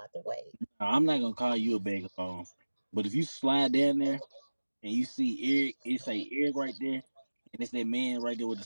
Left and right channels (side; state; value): both; inverted; correlation -1.00